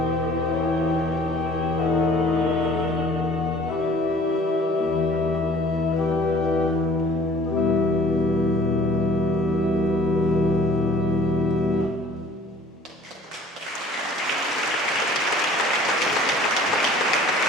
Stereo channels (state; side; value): normal; both; correlation 0.51